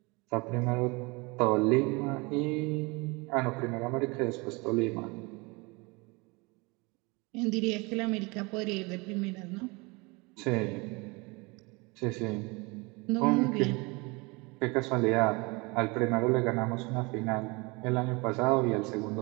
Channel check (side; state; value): left; quieter; 26.8 dB